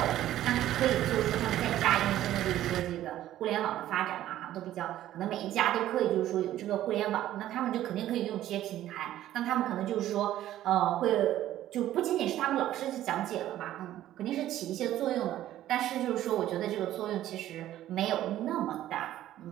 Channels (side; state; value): left; quieter; 13.2 dB